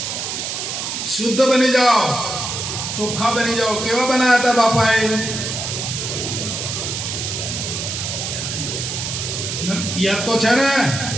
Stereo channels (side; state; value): right; noise; hiss, 4 dB below the sound